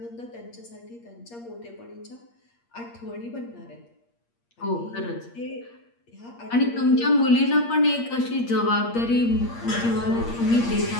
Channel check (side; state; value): right; late; 8.6 ms